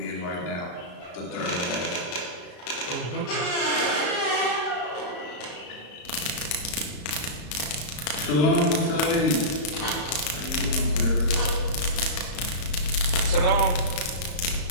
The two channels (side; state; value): right; late; 34 ms